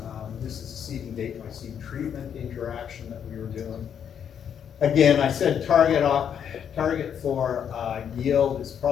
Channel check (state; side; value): quieter; right; 8.3 dB